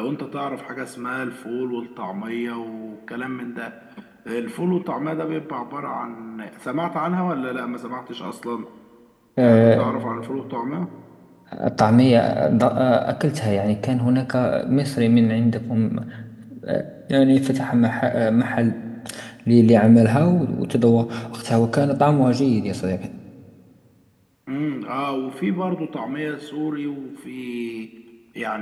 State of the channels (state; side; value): identical; both; correlation 1.00